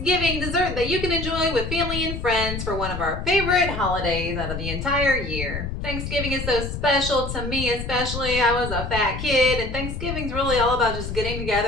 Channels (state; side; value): noise; left; rumble, 6 dB below the sound